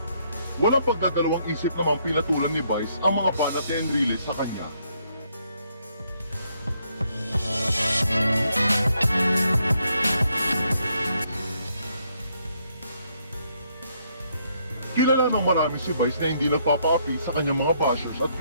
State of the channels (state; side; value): inverted; both; correlation -0.72